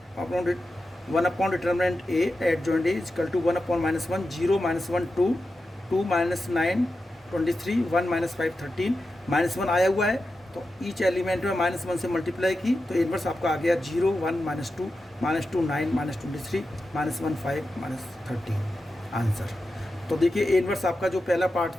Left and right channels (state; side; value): normal; both; correlation 0.90